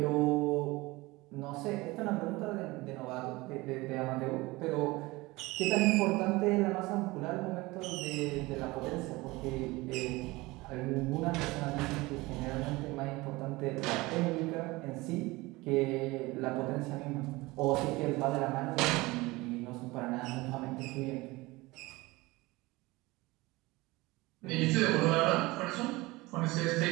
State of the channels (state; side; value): quieter; left; 21.6 dB